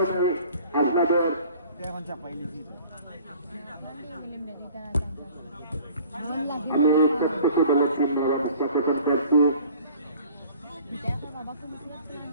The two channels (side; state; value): both; inverted; correlation -0.49